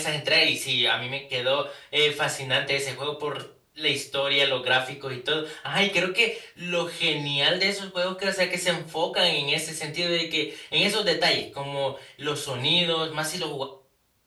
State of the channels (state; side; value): identical; both; correlation 1.00